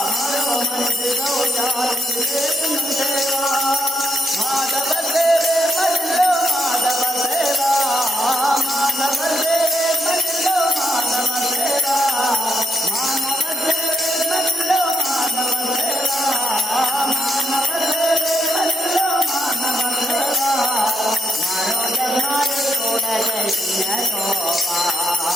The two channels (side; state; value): both; normal; correlation 0.81